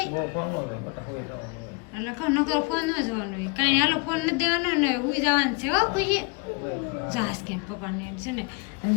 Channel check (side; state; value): right; quieter; 29.6 dB